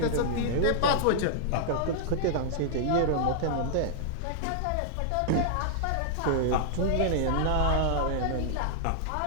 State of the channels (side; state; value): both; different; correlation -0.01